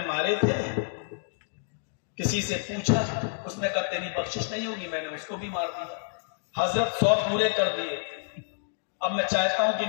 مارے تھے، کسی سے پوچھا، اس نے کہا تیری بخشش نہیں ہوگی، میں نے اس کو بھی مار دیا۔ حضرت 100 پورے کر دیے، اب میں چاہتا ہوں کہ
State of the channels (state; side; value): silent; right; digital silence